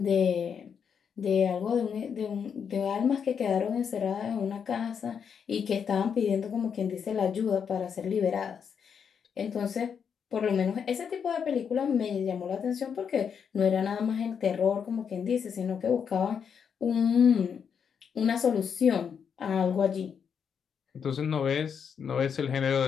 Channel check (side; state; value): right; quieter; 7.1 dB